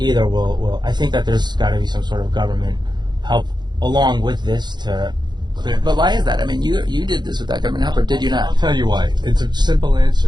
will. I think that there's got to be some sort of government help along with this to. But why is that? I mean, you did this without government help, or did you not? I'll tell you why. It's a simple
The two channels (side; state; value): left; late; 0.21 ms